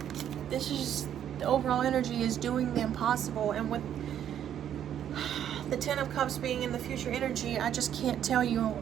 this is, the overall energy is doing the impossible. And with the Ten of Cups being in the future energy, I just can't tell you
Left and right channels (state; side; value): quieter; left; 10.0 dB